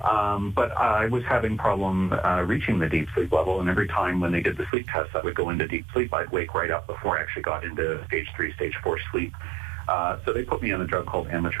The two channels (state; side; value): drops out; left; at 4.7 s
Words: But I was having problem reaching the deep sleep level, and every time when they did the sleep test, I would go into deep sleep. I'd wake right up before I actually got into stage 3, stage 4 sleep. So they put me on a drug called